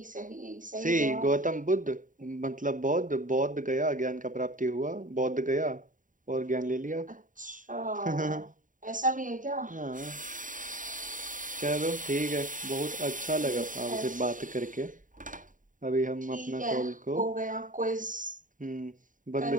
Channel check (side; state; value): left; late; 0.38 ms